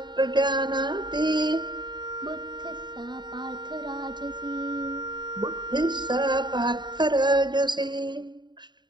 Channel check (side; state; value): left; late; 0.21 ms